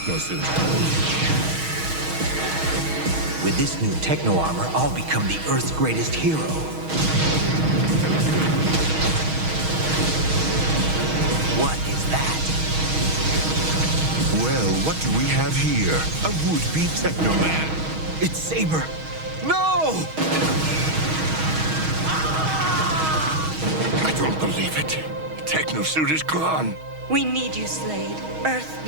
With this new techno armor, I'll become the Earth's greatest hero. What is that? Well, what do we have here? A would-be Teknoman. It's Saber. No! I don't believe it. Tekno-suit is gone. We need you, Slade. Earth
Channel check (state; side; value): late; left; 6.3 ms